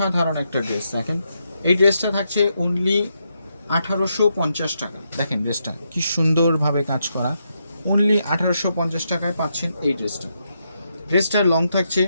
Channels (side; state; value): both; inverted; correlation -0.81